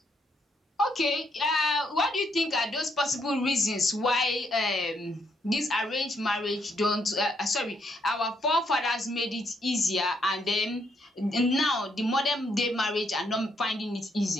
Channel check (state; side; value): normal; both; correlation 0.74